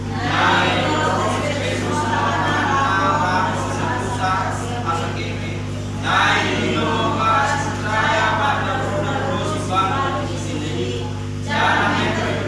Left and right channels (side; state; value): both; identical; correlation 1.00